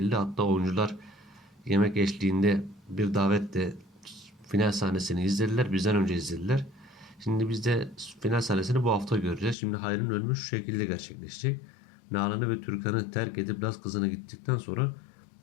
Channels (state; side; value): drops out; right; at 9.6 s